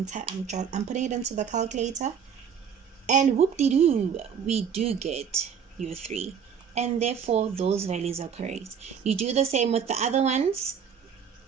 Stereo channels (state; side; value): quieter; left; 7.4 dB